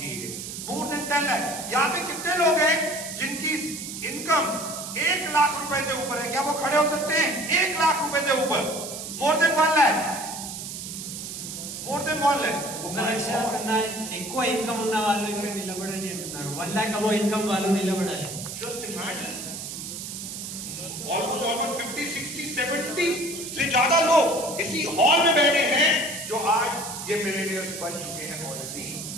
है। More than 10 lakh. यहां पे कितने लोग हैं जिनकी इनकम 1 लाख रुपए से ऊपर है? क्या वो खड़े हो सकते हैं? 1 लाख रुपए से ऊपर। More than 1 lakh, more than 1 lakh. ఒక లక్ష కన్నా ఎక్కువ ఇన్కమ్ ఉన్న వాళ్ళు ఇక్కడ నిలబడండి అంటున్నారు. 1 lakh అబో ఇన్కమ్ వాళ్ళు నిలబడాలి. Just imagine, almost 50, 60, 70 से ज्यादा लोग इसी हॉल में बैठे हैं जो आज ये मिलेनियर्स बन चुके हैं ऑलरेडी।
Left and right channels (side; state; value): right; noise; hiss, 8 dB below the sound